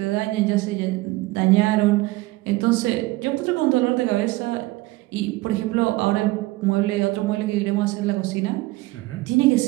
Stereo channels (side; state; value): left; quieter; 20.0 dB